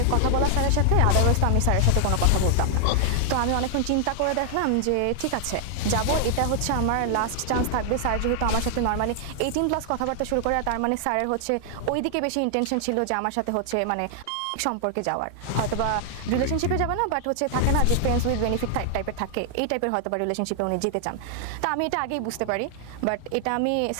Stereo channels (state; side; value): different; both; correlation 0.00